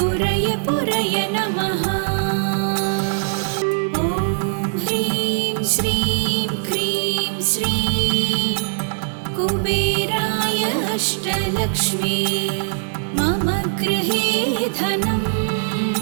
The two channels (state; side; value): silent; left; digital silence